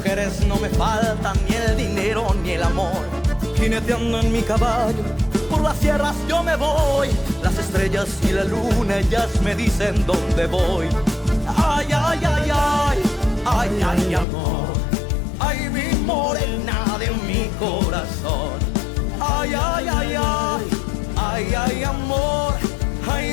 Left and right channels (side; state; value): right; drops out; at 14.2 s